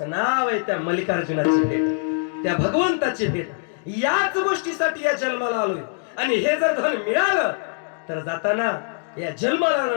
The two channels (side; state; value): right; silent; digital silence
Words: नाव आहे त्या मल्लिकार्जुनाची भेट, त्या भगवंताची भेट. याच गोष्टीसाठी या जन्माला आलोय. आणि हे जर धन मिळालं तर जाताना या जन्माला